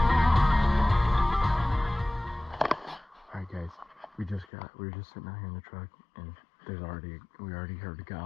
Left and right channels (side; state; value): right; drops out; at 4.5 s